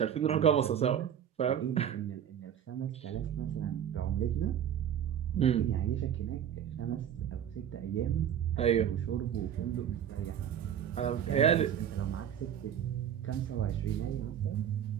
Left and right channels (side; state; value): left; quieter; 9.4 dB